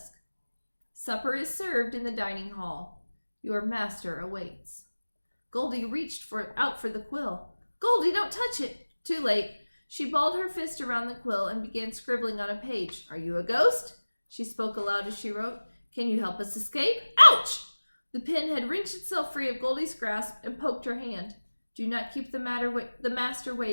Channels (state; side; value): inverted; both; correlation -1.00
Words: Supper is served in the dining hall. Your master awaits. Goldie reached out for the quill. Goldie, don't touch it! Too late. She balled her fist around the quill and began scribbling on a page. Are you a ghost? She spoke aloud as she wrote. Can you help us escape? Ouch! The pen had wrenched itself free of Goldie's grasp and poked her hand. Do not keep the master